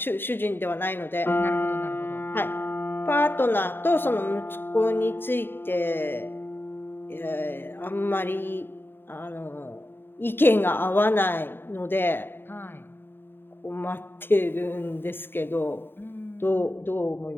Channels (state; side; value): late; right; 0.10 ms